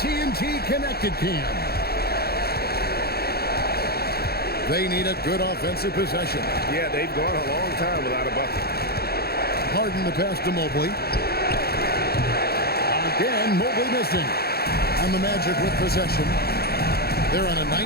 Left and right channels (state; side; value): late; right; 0.46 ms